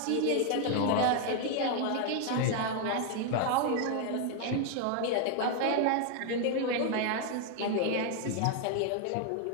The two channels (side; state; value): both; different; correlation 0.01